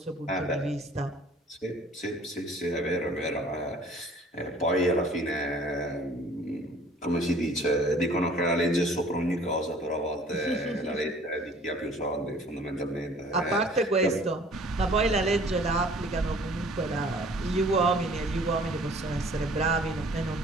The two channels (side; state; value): both; normal; correlation 0.52